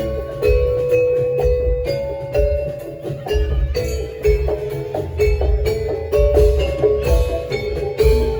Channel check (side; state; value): both; identical; correlation 1.00